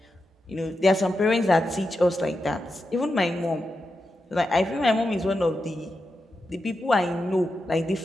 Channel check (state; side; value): normal; both; correlation 0.88